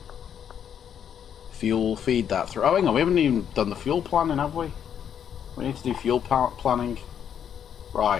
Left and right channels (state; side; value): quieter; right; 8.7 dB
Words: Fuel, feed that through. Oh, hang on, we haven't even done the fuel planning, have we? We need to do fuel planning.